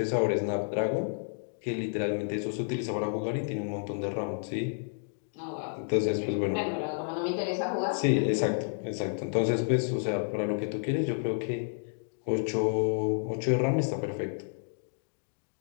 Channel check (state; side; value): silent; right; digital silence